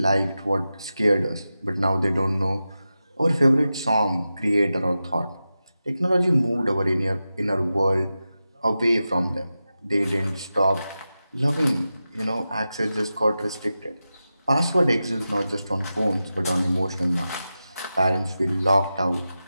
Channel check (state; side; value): inverted; both; correlation -0.92